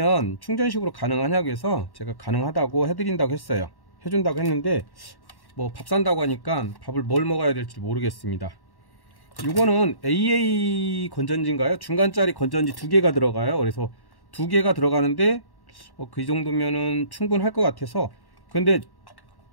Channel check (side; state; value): right; late; 1.1 ms